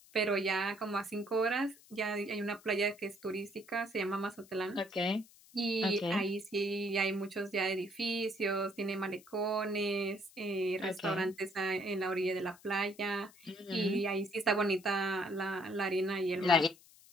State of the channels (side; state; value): left; noise; hiss, 24 dB below the sound